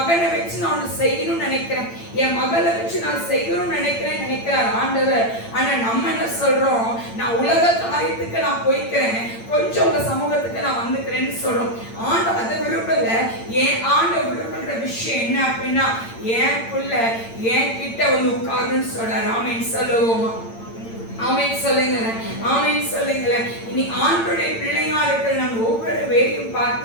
வச்சு நான் செய்யணும்னு நினைக்கிறேன், என் மகளை வச்சு நான் செய்யணும்னு நினைக்கிறார் ஆண்டவர். ஆனா நம்ம என்ன சொல்றோம்? நான் உலக காரியத்துக்கு நான் போய்க்கிறேன், கொஞ்சம் உங்க சமூகத்துக்கு நான் வந்துக்கிறேன்னு சொல்றோம். ஆண்டவர் அதை விரும்பல. என் ஆண்டவர் விரும்புகிற விஷயம் என்ன அப்படின்னா, என் புள்ள என் கிட்ட வந்து உட்காருன்னு சொல்றார். ஆமென் சொல்லுவோமா? ஆமென் சொல்லுங்க, ஆமென் சொல்லுங்க. இனி ஆண்டவருடைய பிள்ளையா இருக்கிற நம்ம ஒவ்வொரு வேலையும்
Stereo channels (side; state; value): right; late; 8.8 ms